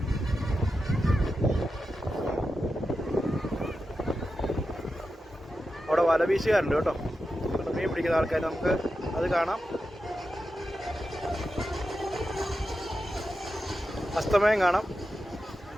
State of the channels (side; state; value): both; normal; correlation 0.90